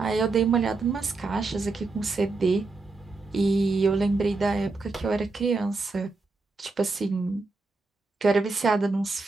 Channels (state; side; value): quieter; left; 3.7 dB